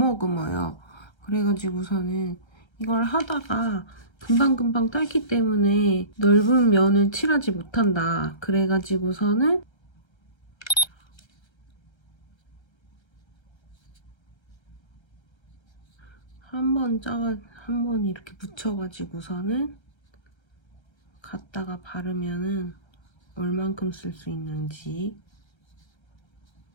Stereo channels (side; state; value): right; late; 1.3 ms